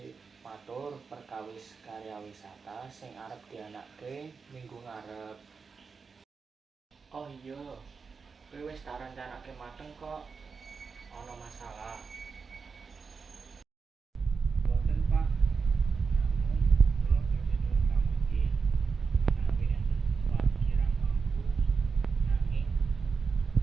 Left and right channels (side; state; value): left; quieter; 5.1 dB